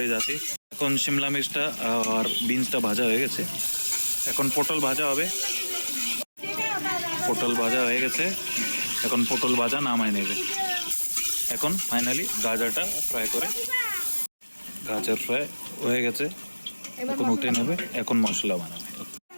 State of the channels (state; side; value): inverted; both; correlation -1.00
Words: যাতে। এখন শিমলা মির্চটা আর বিনসটা ভাজা হয়ে গেছে, এখন পটল ভাজা হবে। পটল ভাজা হয়ে গেছে, এখন পটল ভাজা নামায় নেবে। এখন ফাইনালি গাজরটা ফ্রাই করে, গাজর ফ্রাই হয়ে গেছে, এখন উঠে নেবে। এখন মশলা বানাবে।